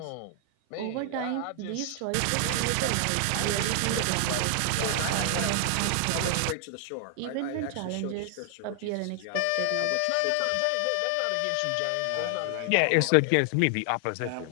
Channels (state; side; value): different; both; correlation 0.00